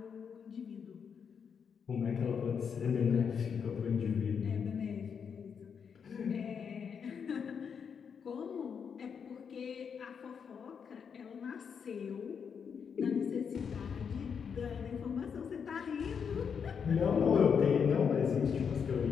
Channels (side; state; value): right; quieter; 6.8 dB